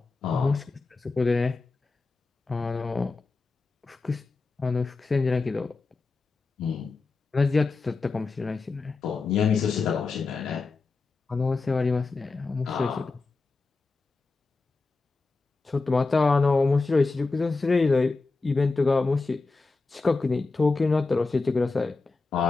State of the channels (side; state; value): right; quieter; 3.8 dB